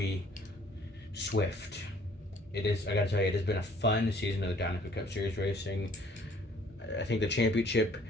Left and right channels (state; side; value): normal; both; correlation 0.58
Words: Swift. I gotta tell you, it has been a fun season of the Dynaco Cup Series racing. I think the championship,